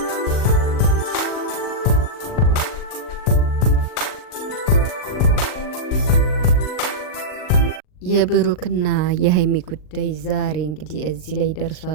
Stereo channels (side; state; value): right; late; 39 ms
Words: የብሩክና የሀይሚ ጉዳይ ዛሬ እንግዲህ እዚህ ላይ